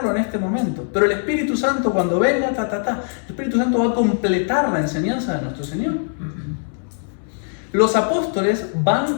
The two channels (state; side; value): silent; right; 65 dB below the other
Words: en este momento. Pero el Espíritu Santo, cuando venga, el Espíritu Santo va a completar la enseñanza de nuestro Señor. Los apóstoles